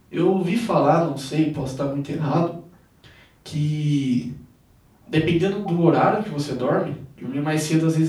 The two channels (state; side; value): identical; both; correlation 1.00